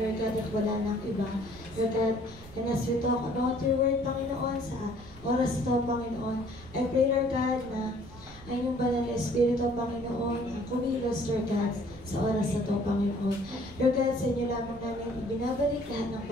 God, at wala nang iba. Lord God, and as we talk about your word, Panginoon, sa oras ito, Panginoon, I pray, Lord God, na ay yung banal na Espiritu, Panginoon, kumilos, Lord God, sa oras na ito, Panginoon. Lord God, sa inyo lamang namin ibinabalik lahat ng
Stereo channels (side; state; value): right; noise; rumble, 18 dB below the sound